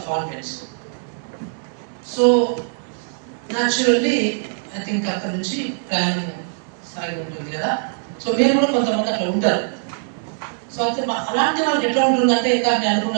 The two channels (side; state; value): left; silent; digital silence